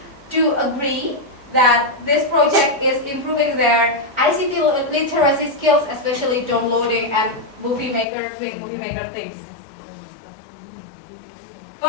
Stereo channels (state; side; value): drops out; right; at 8.1 s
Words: do agree that this project is improving their ICT literacy skills, especially downloading and doing movie maker things.